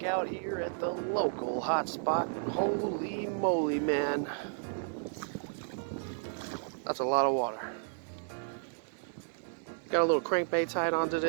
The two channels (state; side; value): silent; left; digital silence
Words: out here at the local hotspot. Holy moly, man. That's a lot of water. Got a little crankbait tied on